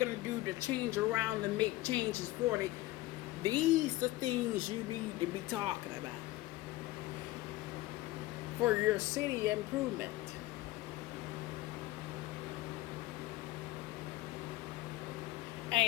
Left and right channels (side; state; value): right; quieter; 17.9 dB